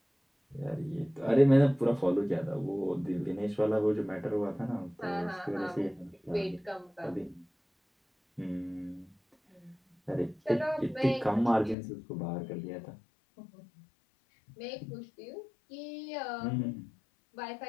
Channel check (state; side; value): drops out; right; at 11.8 s